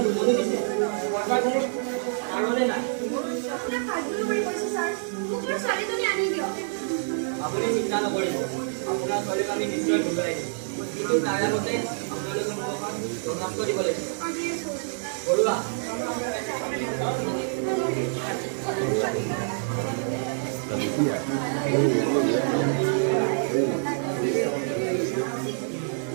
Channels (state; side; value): silent; left; digital silence